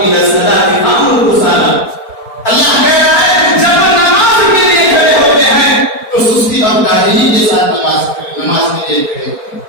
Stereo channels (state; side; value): late; right; 4.4 ms